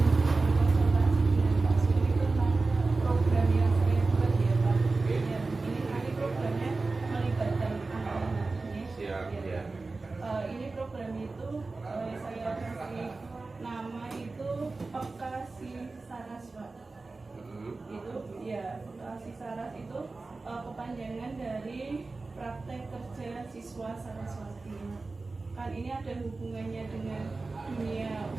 konsultasi dengan Pak Sumi tentang program yang saya buat ya Pak. Oke. Ya, ini programnya melibatkan anak-anak ini. Siap, Ya. ya. Ini program itu saya kasih nama itu Pekasi Saras Pak. Itu ya Pekasi Saras itu kepanjangan dari praktek kerja siswa Saraswati. Kan ini ada hubungannya dengan dunia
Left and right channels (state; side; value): quieter; left; 3.6 dB